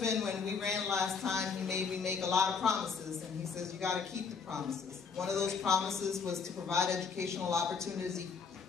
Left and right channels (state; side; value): quieter; right; 5.5 dB